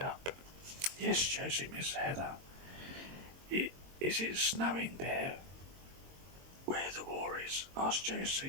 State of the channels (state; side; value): late; left; 22 ms